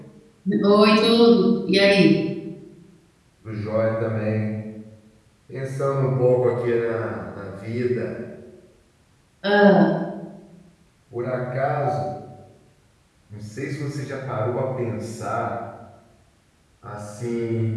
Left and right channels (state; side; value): identical; both; correlation 1.00